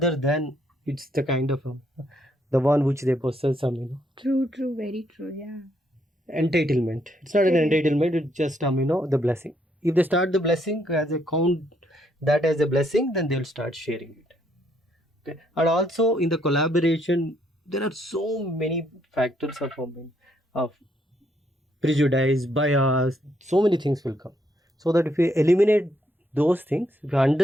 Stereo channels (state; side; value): normal; both; correlation 0.73